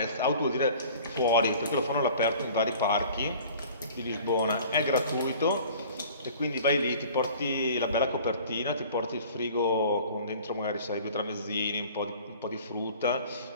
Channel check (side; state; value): both; inverted; correlation -0.47